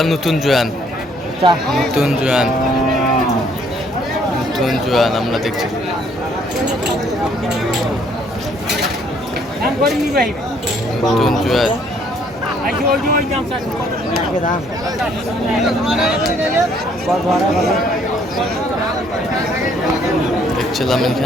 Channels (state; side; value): normal; both; correlation 0.64